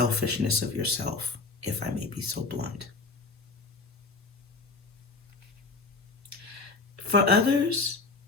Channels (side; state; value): right; quieter; 3.9 dB